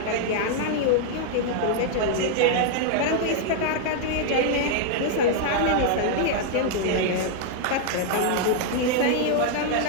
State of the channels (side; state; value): both; different; correlation 0.00